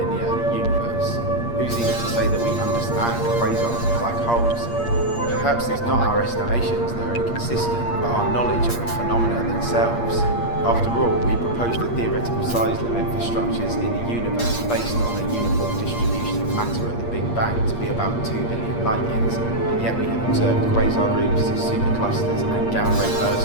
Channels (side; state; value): right; late; 8.5 ms